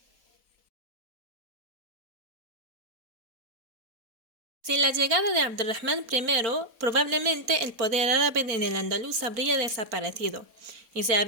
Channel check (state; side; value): late; left; 4.1 ms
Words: Sin la llegada de Abderrahmán I, probablemente el poder árabe en el Andaluz habría desaparecido y se